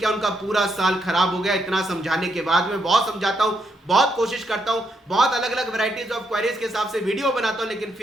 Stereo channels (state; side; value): normal; both; correlation 0.78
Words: उनका पूरा साल खराब हो गया। इतना समझाने के बाद मैं बहुत समझाता हूं, बहुत कोशिश करता हूं, बहुत अलग अलग वैरायटीज ऑफ क्वेरीज के हिसाब से वीडियो बनाता हूं, लेकिन